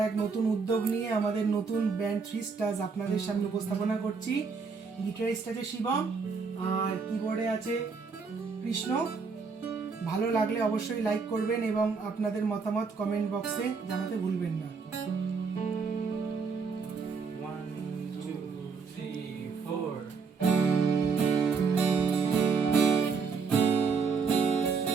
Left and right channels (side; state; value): left; quieter; 5.1 dB